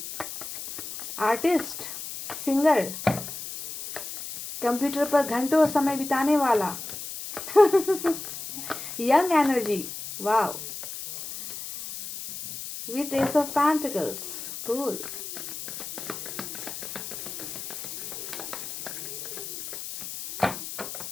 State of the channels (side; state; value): left; noise; hiss, 8 dB below the sound